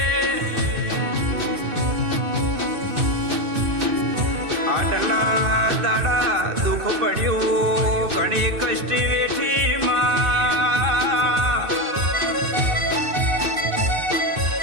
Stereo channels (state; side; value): late; left; 2.6 ms